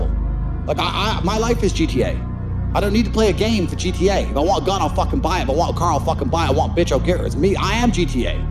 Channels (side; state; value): both; identical; correlation 1.00